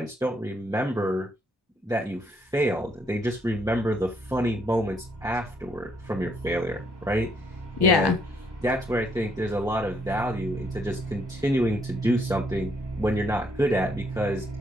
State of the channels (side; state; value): both; normal; correlation 0.71